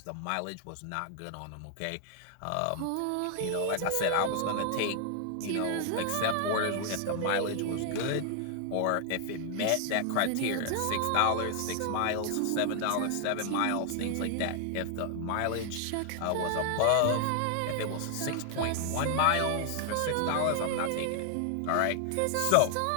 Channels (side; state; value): both; different; correlation 0.00